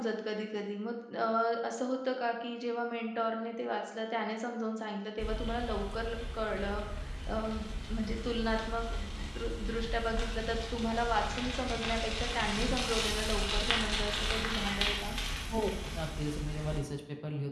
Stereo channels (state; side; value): identical; both; correlation 1.00